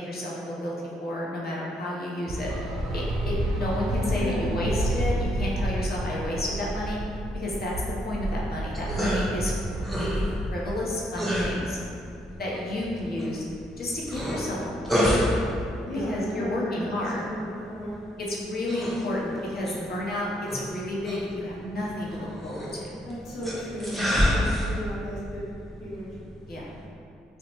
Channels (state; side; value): normal; both; correlation 0.74